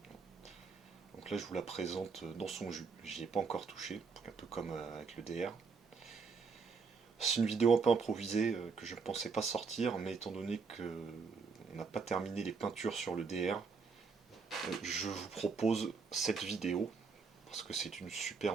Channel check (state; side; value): quieter; left; 5.0 dB